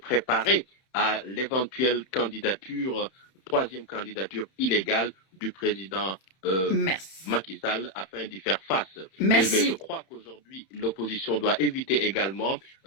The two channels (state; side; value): late; right; 31 ms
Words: à l'éventuelle candidature, troisième candidature illégale du président Macky Sall afin d'y faire face. Mais je crois qu'aujourd'hui, l'opposition doit éviter également